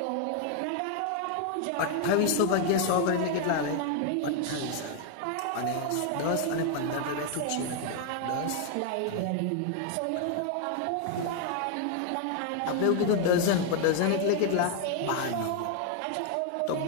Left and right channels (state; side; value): different; both; correlation 0.00